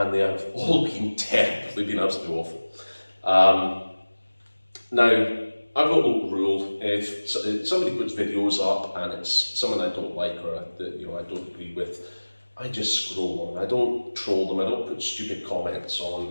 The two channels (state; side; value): inverted; both; correlation -1.00